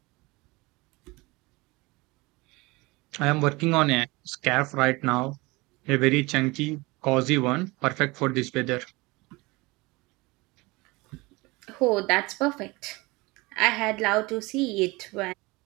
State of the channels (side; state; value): left; quieter; 23.5 dB